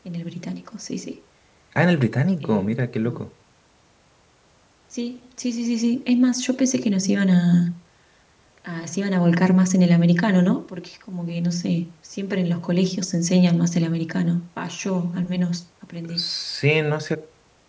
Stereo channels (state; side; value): identical; both; correlation 1.00